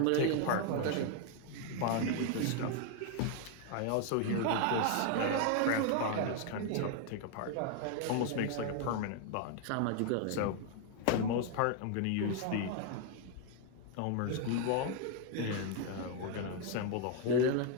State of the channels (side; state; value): both; different; correlation 0.00